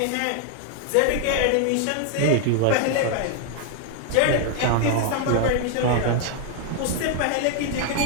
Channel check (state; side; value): different; both; correlation 0.00